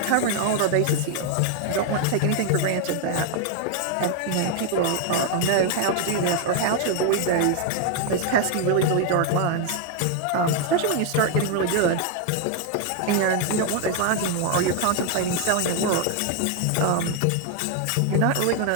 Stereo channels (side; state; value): both; different; correlation 0.00